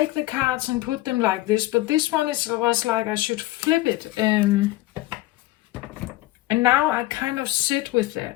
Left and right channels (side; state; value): right; quieter; 17.6 dB